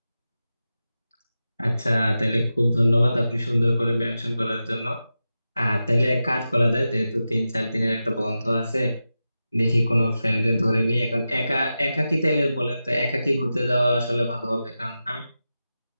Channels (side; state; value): both; inverted; correlation -0.92